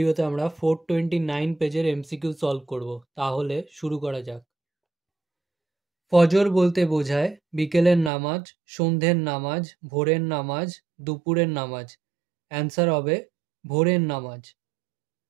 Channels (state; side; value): drops out; left; at 8.1 s